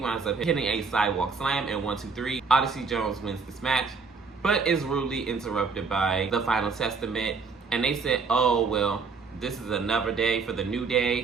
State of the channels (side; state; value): left; quieter; 4.8 dB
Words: up hitting a sidewalk slam and 1, 2, 3. Odyssey Jones wins this match, but is rudely interrupted by the Final Testament. And they said, oh, well, this is another day for the New